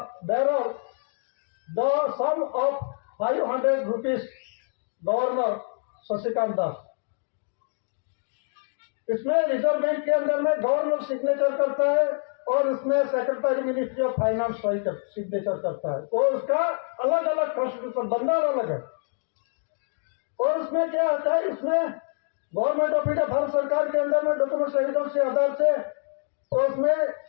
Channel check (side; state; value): right; silent; 61 dB below the other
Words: bearer the sum of 500 rupees, governor Shashikant Das. इसमें रिजर्व बैंक के अंदर में गवर्नर सिग्नेचर करता है और इसमें secretary ministry of finance signature करता है। तो उसका अलग अलग कॉन्स्टिट्यूशन बनना अलग है। और उसमें क्या होता है? इसमें गवर्नमेंट ऑफ इंडिया, भारत सरकार के अंदर में डॉक्यूमेंट एविडेंस के आधार से, तो उसमें